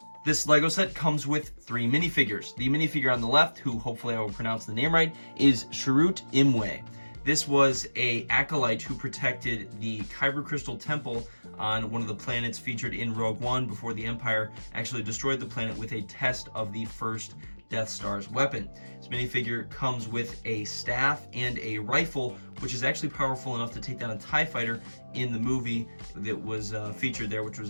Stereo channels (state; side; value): inverted; both; correlation -1.00